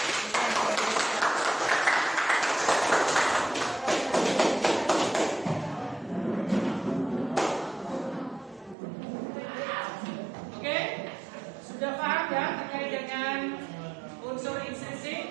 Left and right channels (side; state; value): left; drops out; at 8.8 s